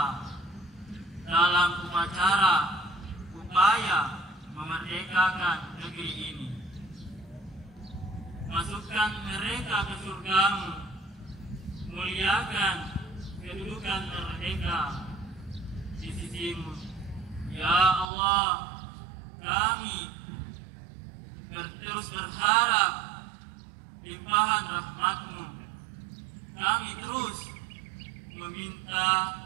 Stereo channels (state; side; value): drops out; left; at 18.1 s